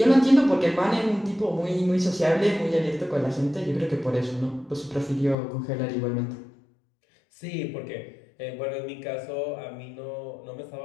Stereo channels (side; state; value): right; drops out; at 5.4 s